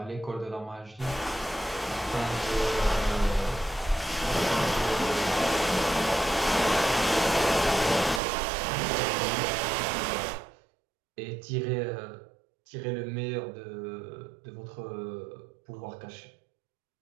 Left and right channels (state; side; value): drops out; left; at 8.2 s